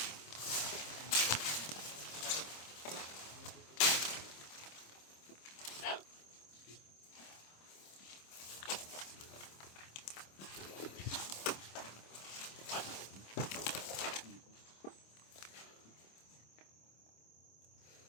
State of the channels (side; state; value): right; late; 26 ms